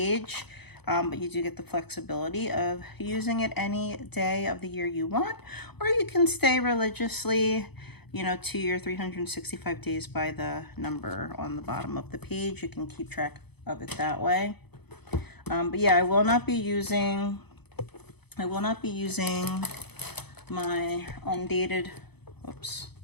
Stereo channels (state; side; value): late; right; 0.98 ms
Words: But you do get the flexibility of using it any day of the year you want, or you can stay religiously, you know, to your 365 days by the number on the bottom of the page. You can keep track of it that way. But yeah, I will not be using my undated, whoops,